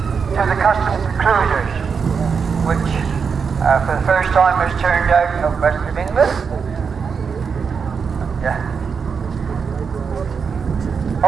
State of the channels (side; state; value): left; quieter; 6.0 dB